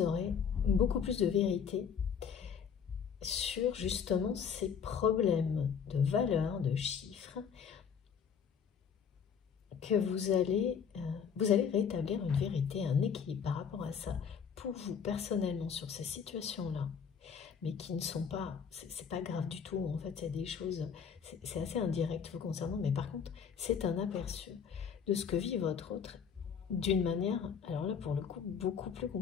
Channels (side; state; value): right; quieter; 7.0 dB